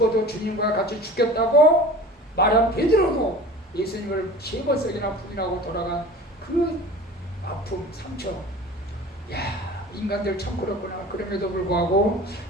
주님과 같이 죽겠다고 말한 베드로도 예수님을 3번씩이나 부인하고 돌아간 그 아픔, 상처. 야, 인간들 참 그렇구나. 그럼에도 불구하고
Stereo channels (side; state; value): both; normal; correlation 0.40